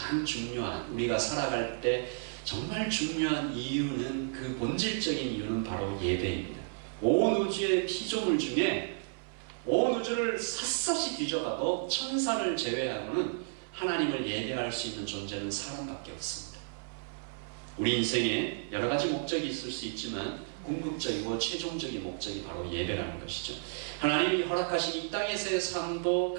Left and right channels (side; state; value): left; silent; 56 dB below the other